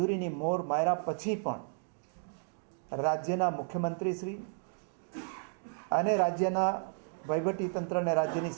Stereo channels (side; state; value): left; silent; 56 dB below the other